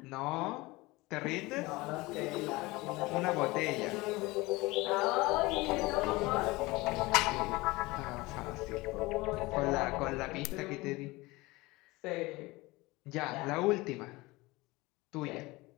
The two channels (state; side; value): quieter; right; 21.8 dB